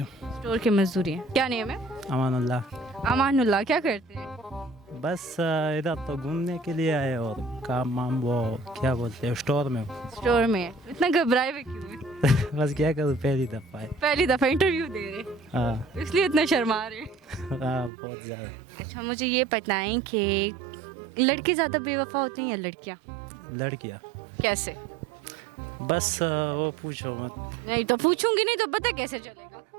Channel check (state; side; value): drops out; left; at 17.9 s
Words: स्टोर के मजदूरी हैं क्या नेम है अमानुल्लाह. अमानुल्लाह क्या करते हैं बस इधर तो घूमने के लिए आए और काम वाम वो क्या बोलते हैं स्टोर में. स्टोर में इतना घबराए हुए क्यों हैं? बस क्या करूँ पहली दफ़ा है. पहली दफ़ा इंटरव्यू दे रहे हाँ इसलिए इतना शर्मा रहे हैं। हाँ बहुत ज़्यादा. अच्छा मुझे ये बताएं कि लड़के ज़्यादा बेवफा होते हैं या लड़कियाँ लड़कियाँ कैसे बस वो पूछो मत. नहीं तो पूछूंगी नहीं तो पता कैसे चलेगा